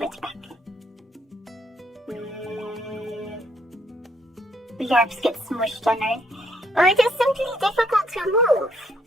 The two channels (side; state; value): both; normal; correlation 0.70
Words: it back. Glorps get smushed on Earth. Well, it is simply difficult to move.